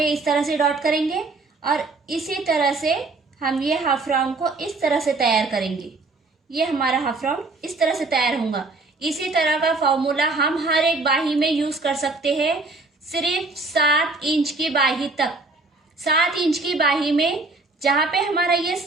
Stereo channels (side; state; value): left; quieter; 3.5 dB